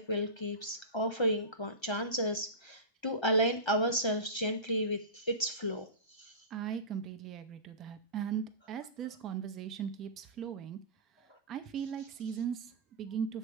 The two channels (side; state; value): right; late; 1.3 ms